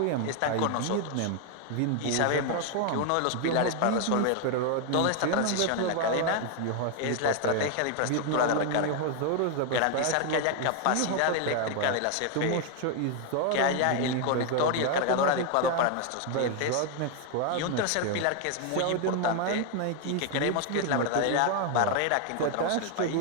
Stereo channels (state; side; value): different; both; correlation 0.01